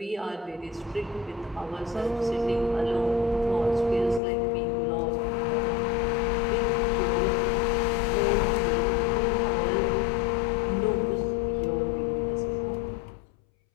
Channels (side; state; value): right; drops out; at 4.2 s